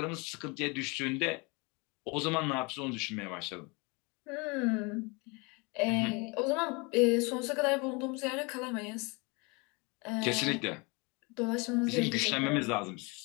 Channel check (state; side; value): quieter; right; 28.9 dB